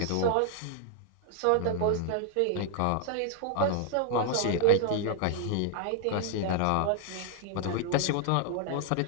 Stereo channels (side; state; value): both; different; correlation 0.00